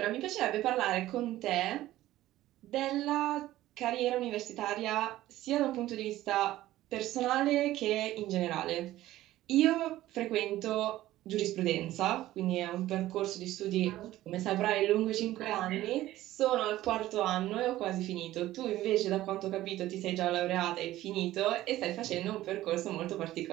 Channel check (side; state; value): left; quieter; 15.2 dB